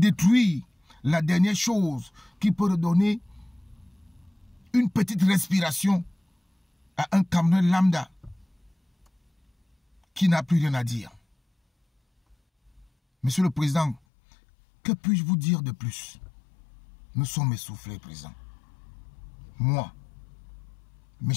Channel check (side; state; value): right; drops out; at 14.0 s